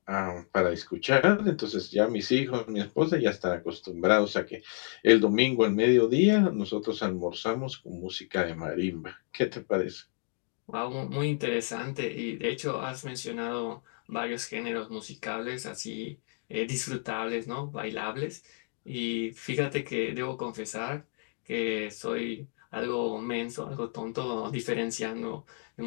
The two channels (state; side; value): silent; right; 58 dB below the other